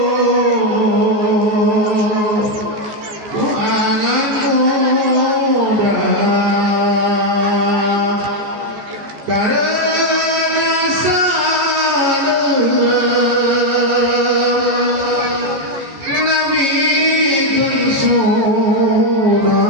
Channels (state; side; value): late; left; 14 ms